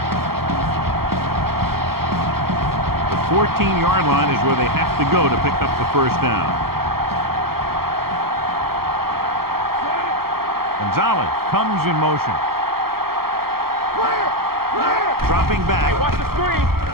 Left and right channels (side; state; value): left; late; 0.94 ms